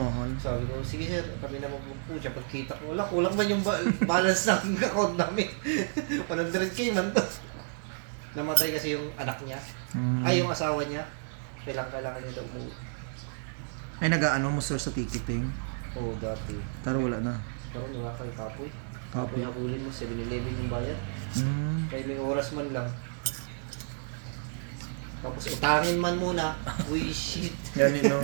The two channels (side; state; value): left; silent; 56 dB below the other